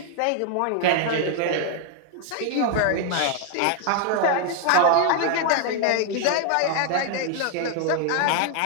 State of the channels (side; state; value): both; different; correlation 0.00